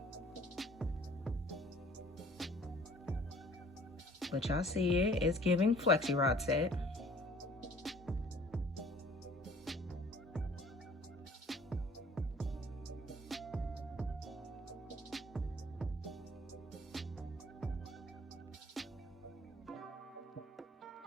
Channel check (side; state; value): both; normal; correlation 0.53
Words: But y'all see it, it's giving Flexi Rod set.